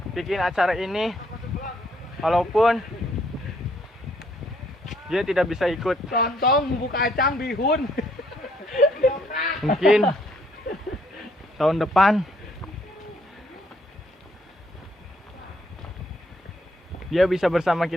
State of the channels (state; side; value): normal; both; correlation 0.68